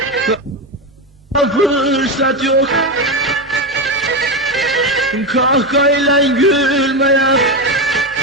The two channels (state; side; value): normal; both; correlation 0.13